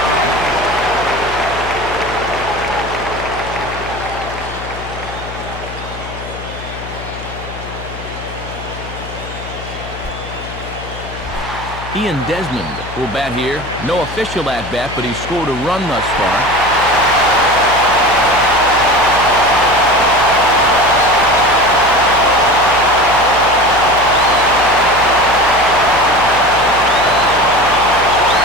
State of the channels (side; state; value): left; noise; hum, 12 dB below the sound